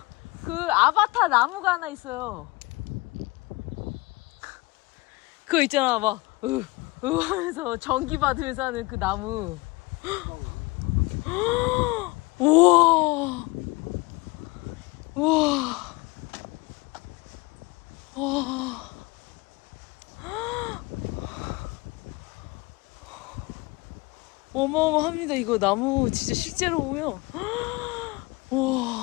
그 아바타 나무가 하나 있어요. 그거 있잖아, 막 하면서 전기 받으면서 하는 그 나무. 우와, 우와, 와. 어마어마합니다. 이거 나무 진짜 실제로 보면.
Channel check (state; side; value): quieter; right; 23.7 dB